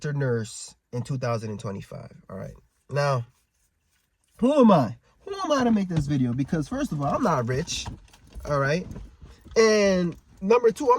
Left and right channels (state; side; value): identical; both; correlation 1.00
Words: nurse in 2025. All right. Now, who am I? Who am I to make this video? Because first of all, I'm not rich. All right. And number two,